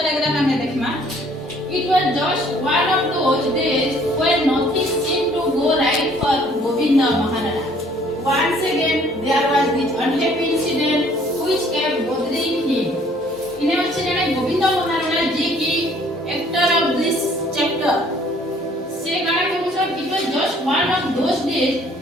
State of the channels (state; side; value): normal; both; correlation 0.59